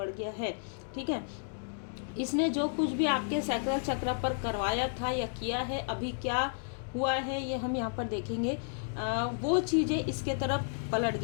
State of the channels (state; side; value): silent; right; digital silence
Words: गया है। ठीक है, इसने जो कुछ भी आपके सैक्रल चक्र पर करवाया था या किया है, अभी क्या हुआ है ये हम यहाँ पर देखेंगे। वो चीज़ें इसके तरफ पलट